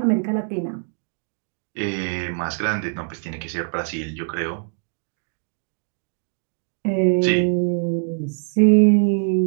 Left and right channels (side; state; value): left; silent; 63 dB below the other